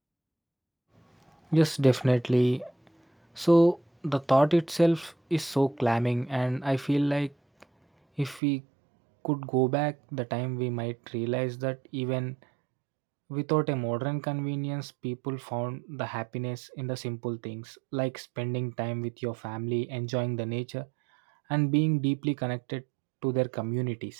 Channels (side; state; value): left; drops out; at 8.4 s